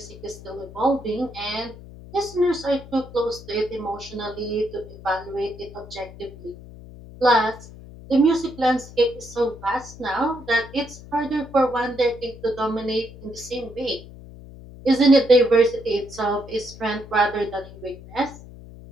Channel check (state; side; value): noise; left; hum, 17 dB below the sound